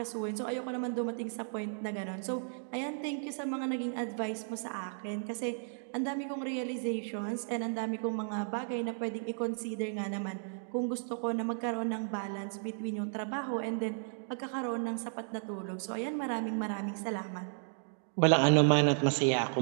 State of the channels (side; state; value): left; silent; digital silence